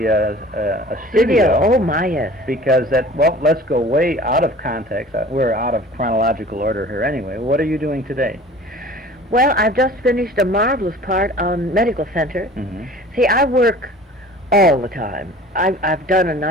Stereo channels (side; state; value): both; normal; correlation 0.44